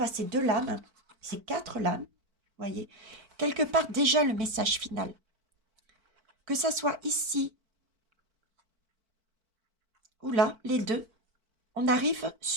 à ces deux lames, ces quatre lames, voyez, quelque part déjà le message final. Que ça soit ici ou là, les deux, on arrive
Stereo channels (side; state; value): left; late; 4.5 ms